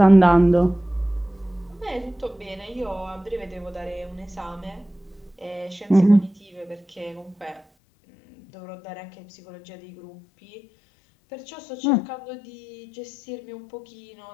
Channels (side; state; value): right; drops out; at 7.7 s